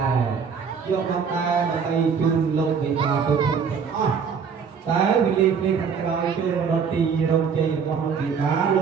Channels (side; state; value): left; quieter; 6.2 dB